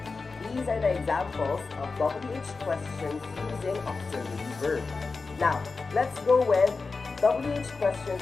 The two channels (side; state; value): right; quieter; 4.2 dB